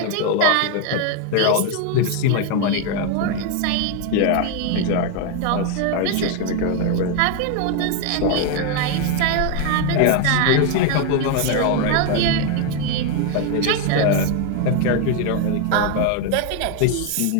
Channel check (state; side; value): different; both; correlation 0.01